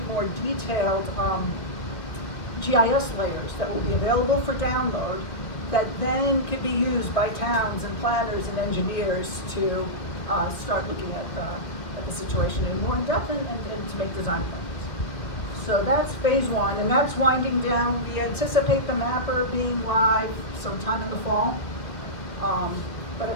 more detailed GIS layers that will be available for download that then could be used by towns and planners and engineers to start looking at the situation in more in depth and to make design plans. So that's phase one, and that's winding down. We anticipate the mapper being live sometime in the fall. But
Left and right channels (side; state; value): right; late; 1.9 ms